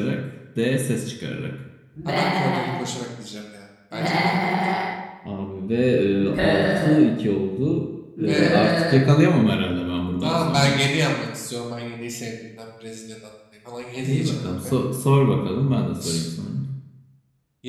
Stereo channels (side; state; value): both; identical; correlation 1.00